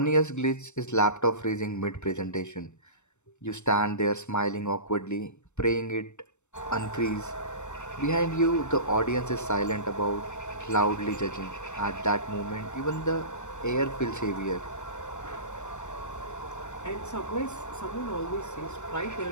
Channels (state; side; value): late; right; 0.83 ms